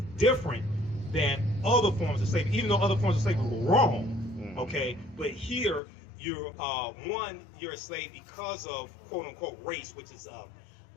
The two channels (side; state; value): right; drops out; at 5.8 s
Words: different than other forms of slavery, even though other forms of slavery were wrong. Okay, but here you're a slave because of quote unquote race, which is